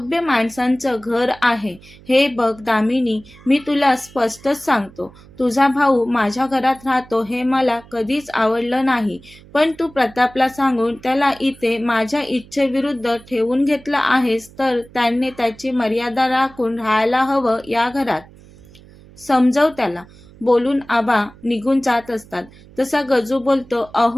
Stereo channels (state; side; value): noise; right; hum, 23 dB below the sound